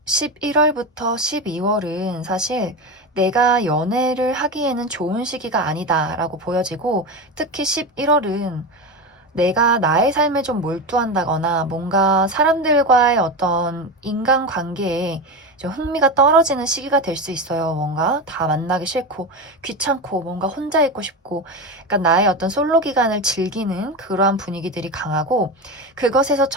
11월부터 12월은 사실 내가 연애를 하기에는 좋은 시기가 아니다라고 보여지고, 특히 11월은 내가 나의 삶에 좀 몰두한다거나 뭔가 사람들과의 어떤 인간관계에 좀 흥미가 떨어지는 시기가 될 수 있어요. 뭔가 다 만나기 싫고 귀찮고 뭔가 혼자 있고 싶고, 그러니까 나의 어떤 솔로 기간을 즐기는 그러한 분위기들이 강하고, 그것에서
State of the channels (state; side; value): normal; both; correlation 0.20